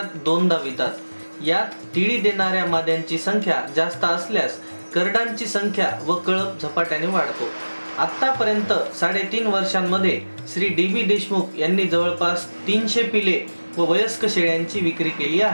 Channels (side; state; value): both; inverted; correlation -1.00